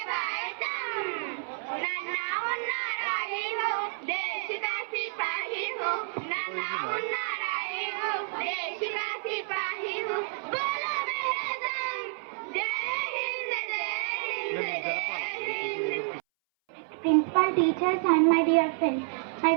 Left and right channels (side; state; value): left; silent; 58 dB below the other